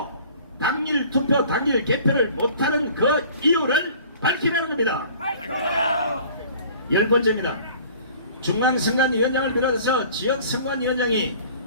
당일 투표, 당일 개표를 못하는 그 이유를 밝히라는 겁니다. 열 번째입니다. 중앙선관위원장을 비롯해서 지역선관위원장이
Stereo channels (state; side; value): inverted; both; correlation -0.49